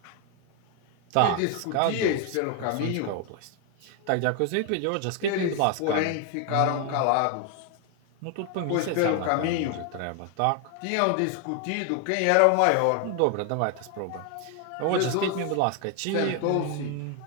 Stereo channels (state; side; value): different; both; correlation 0.01